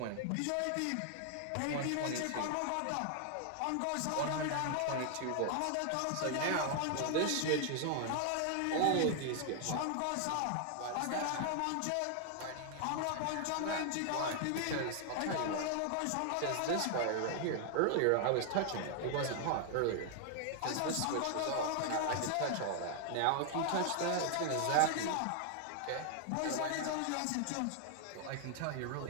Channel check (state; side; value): different; both; correlation 0.00